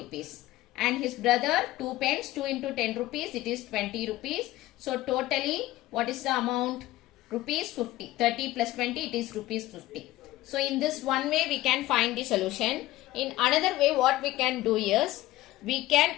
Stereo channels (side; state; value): right; quieter; 16.6 dB